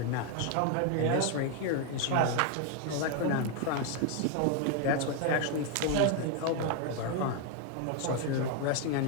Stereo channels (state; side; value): different; both; correlation 0.01